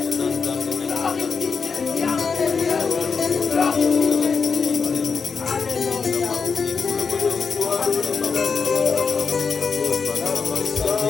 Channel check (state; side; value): quieter; right; 5.4 dB